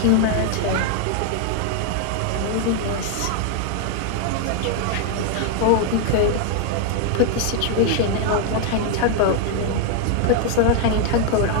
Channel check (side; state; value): both; different; correlation 0.00